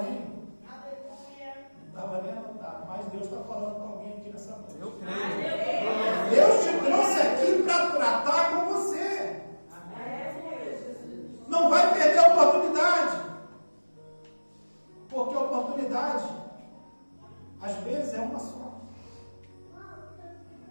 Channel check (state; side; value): inverted; both; correlation -1.00